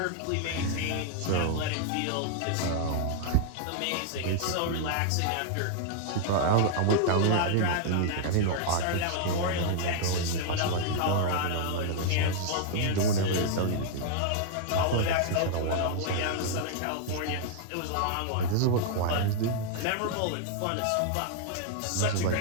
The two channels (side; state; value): both; different; correlation 0.00